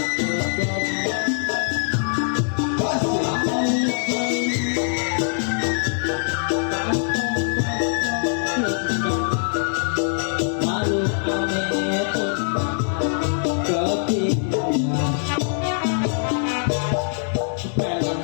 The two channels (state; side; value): silent; right; digital silence